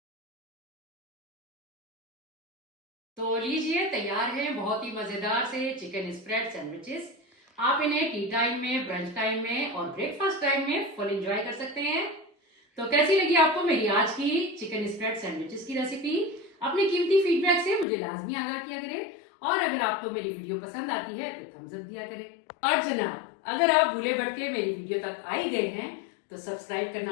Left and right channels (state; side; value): drops out; right; at 17.9 s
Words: तो लीजिए तैयार है बहुत ही मजेदार से चिकन स्प्रेड सैंडविचेस। आप इन्हें टी टाइम में, ब्रंच टाइम में और ब्रेकफास्ट टाइम में फुल एंजॉय कर सकते हैं। तो कैसी लगी आपको मेरी आज की चिकन स्प्रेड सैंडविचेस की रेसिपी? अपने कीमती फीडबैक से मुझे लाजमी आगाह किया करें और अगर आपको मेरी वीडियो पसंद आती है तो थम्स अप दिया करें। और जनाब, अगर आप भूले भटके मेरी वीडियो तक आ ही गए हैं तो सब्सक्राइब